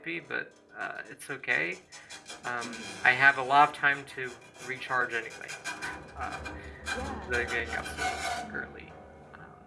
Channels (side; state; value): both; identical; correlation 1.00